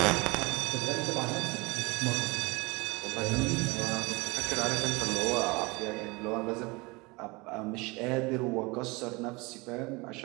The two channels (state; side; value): quieter; left; 25.2 dB